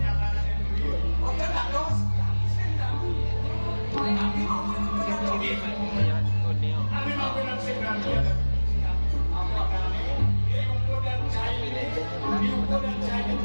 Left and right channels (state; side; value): inverted; both; correlation -1.00